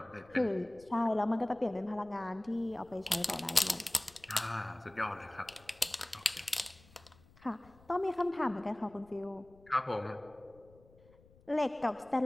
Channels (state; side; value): noise; left; rumble, 26 dB below the sound